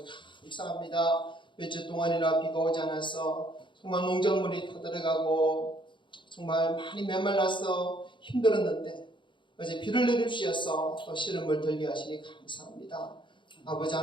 감사합니다. 며칠 동안이나 비가 오지 않아서 정말 농작물이 타들어가고 정말 많이 메말라서 힘들었는데 어제 비를 내려주셔서 또 시름을 들게 하시니 감사합니다. 아버지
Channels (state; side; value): late; right; 0.23 ms